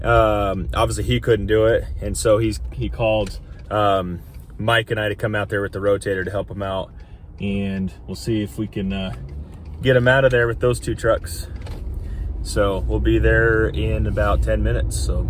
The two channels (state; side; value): identical; both; correlation 1.00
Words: Obviously he couldn't do it, and so he called Mike and I to come out there with the rotator to help him out, and we'll see if we can get him out of there with those two trucks. So we'll be there in about 10 minutes, so